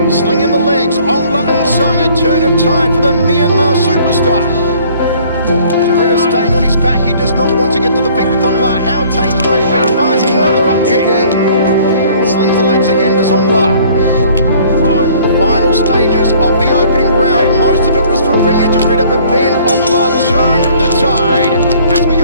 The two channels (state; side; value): inverted; both; correlation -0.56